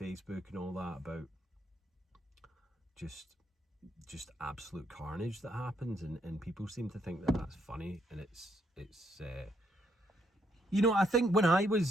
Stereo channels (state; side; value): normal; both; correlation 0.74